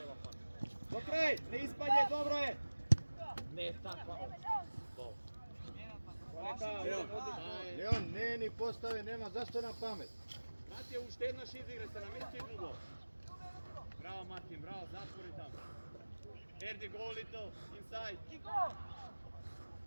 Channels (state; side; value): inverted; both; correlation -1.00